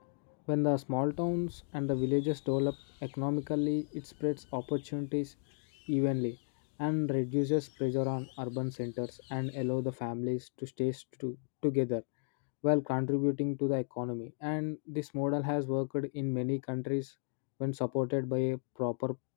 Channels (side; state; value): right; silent; digital silence